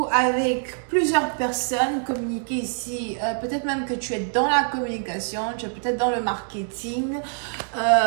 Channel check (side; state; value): left; silent; 62 dB below the other